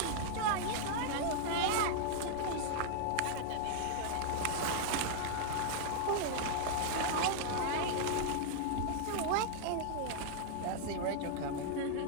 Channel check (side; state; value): both; different; correlation 0.00